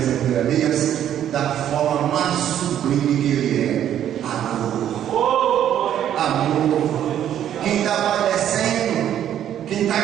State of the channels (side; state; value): left; quieter; 10.6 dB